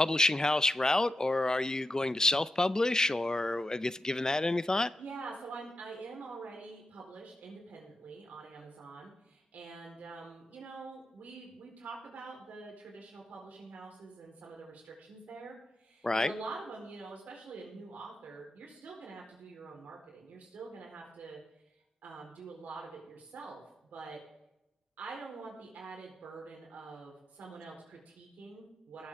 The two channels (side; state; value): both; normal; correlation 0.88